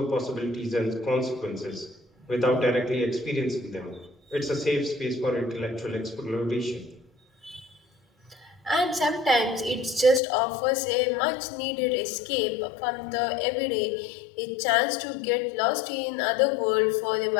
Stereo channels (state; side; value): drops out; right; at 10.2 s